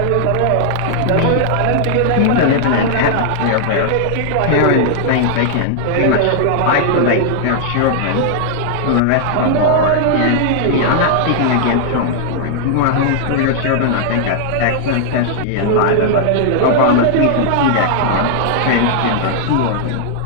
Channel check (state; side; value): different; both; correlation -0.01